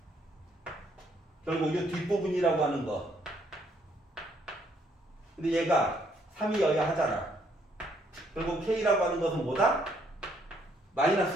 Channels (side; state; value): both; normal; correlation 0.69